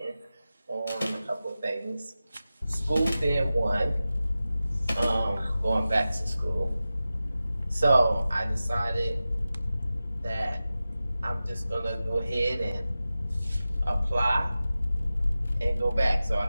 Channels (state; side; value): inverted; both; correlation -0.94